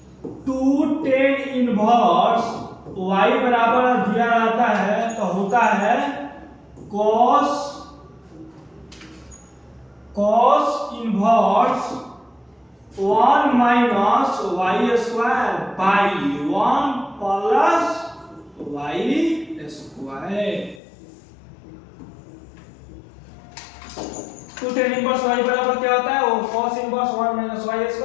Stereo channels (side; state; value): right; drops out; at 20.8 s